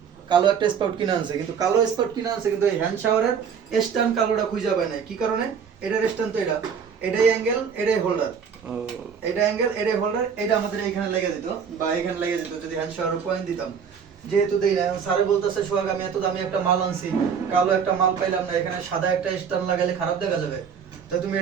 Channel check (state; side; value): quieter; left; 6.9 dB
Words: কালো একটা স্পাউট কিনে আনছে। কিন্তু কালো স্পাউট কিনে আনছে কিন্তু এই হ্যান্ড শাওয়ারের স্ট্যান্ড কালোটা খুঁজে পায় নাই। কি কারণে? এটার স্ট্যান্ড তো এটাই অ্যাঙ্গেল, এটাই হোল্ডার, এটা অ্যাঙ্গেল, এটাই হোল্ডার, এটা আমাদের এখানে লেগে দিত বা এখানে লেগে যেত যদি হ্যান্ড শাওয়ার পয়েন্ট দিতাম। যেহেতু দেই না, এখন স্যারে বলতেছে সোহাগ আমি এত দামি একটা মাল আনছি, কালো একটা মাল পাইলাম না, এখানে সাদা একটা স্ট্যান্ড লাগাইলে খারাপ দেখা যাবে, তো তুমি